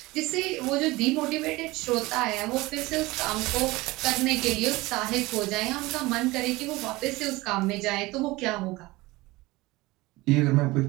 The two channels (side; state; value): left; quieter; 20.8 dB